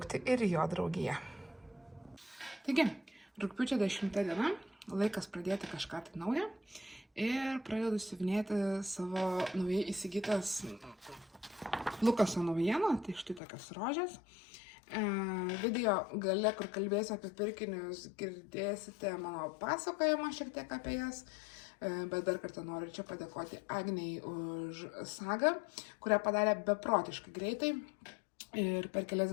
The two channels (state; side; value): drops out; right; at 13.4 s